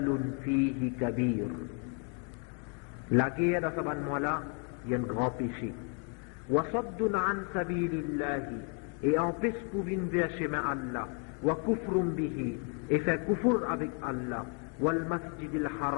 فيه كبير. La guerre dans ce ban mois là, il y a un grand péché. وصد عن سبيل الله. Et empêche pour venir vers chemin Allah. وكفر به. Et fait kufur avec Allah. والمسجد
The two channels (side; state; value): right; quieter; 38.9 dB